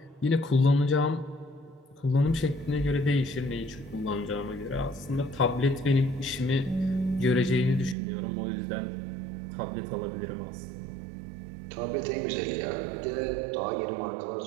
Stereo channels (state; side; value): drops out; left; at 8.0 s